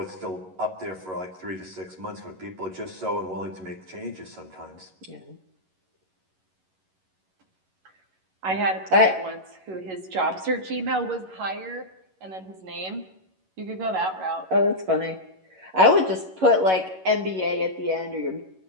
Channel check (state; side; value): late; left; 11 ms